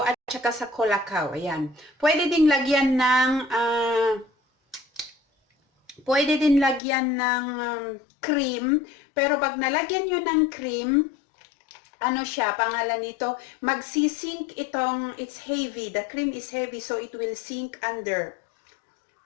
at saka sa colacao. Ayan. Pwede din lagyan ng cream, pero pag nalagyan nyo ng cream, ano siya, pangalan nito, magsisink itong, it's heavy, the cream is heavy, so it will sink under.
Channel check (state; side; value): drops out; right; at 6.8 s